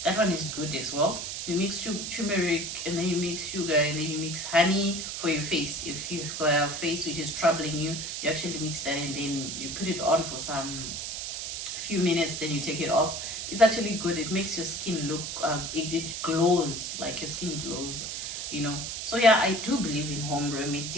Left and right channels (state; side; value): noise; right; hiss, 5 dB below the sound